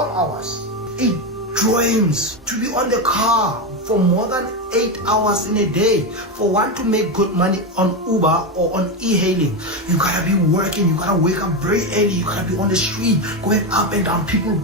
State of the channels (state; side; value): normal; both; correlation 0.12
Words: hours. It drains to be on the car for more than 8 hours in a day. For one to make good money on Uber or on e-hailing, you gotta be working, you gotta wake up very early, you gotta be on the street, going up and down, people